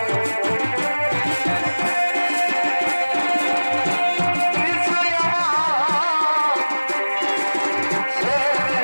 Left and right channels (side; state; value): both; inverted; correlation -1.00